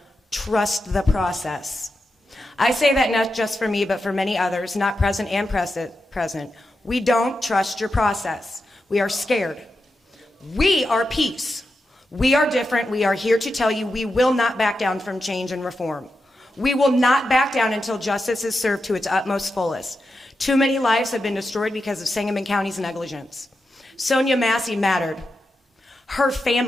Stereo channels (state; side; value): normal; both; correlation 0.88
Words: trust the process. I say that not just for me, but for many others, not present and present. We don't trust your process. We are scared. We are peace. We are different. We are here to tell you we will not back down from change and reform. We will not back down until justice is served to its utmost fullest. Too many lives have been destroyed because of Sangamon County's negligence. Sonia Massey mattered. Her